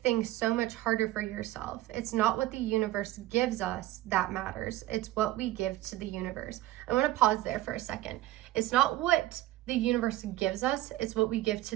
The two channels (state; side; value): quieter; left; 16.0 dB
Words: so much harder for yourself. It's not what the universe gives us that matters. It's what we give to the universe. I want to pause there for a second. It's not what the universe gives us, it's what we give